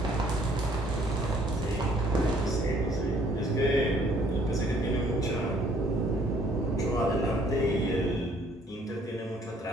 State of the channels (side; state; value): both; normal; correlation 0.62